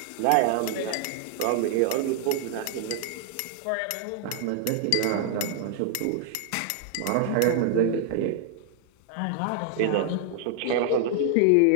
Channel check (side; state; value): both; different; correlation 0.00